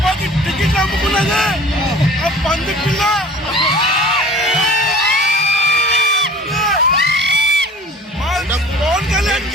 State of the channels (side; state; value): both; normal; correlation 0.45